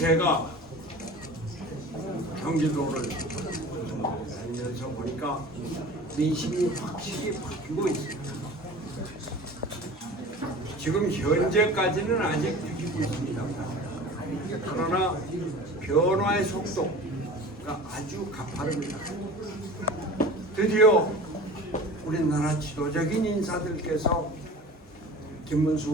경기도를 다니면서 보니까 민심이 확실히 바뀌고 있습니다. 지금 현재까지는 아직 느끼고 있습니다. 그러나 변화의 속도가 아주 가파릅니다. 드디어 우리나라 지도적인 인사들께서 김문수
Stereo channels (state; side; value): normal; both; correlation 0.39